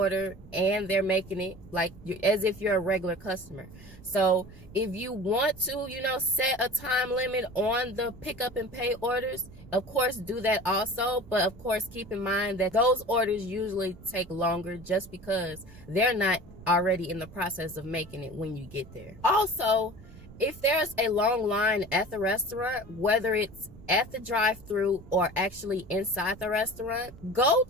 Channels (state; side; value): noise; right; rumble, 19 dB below the sound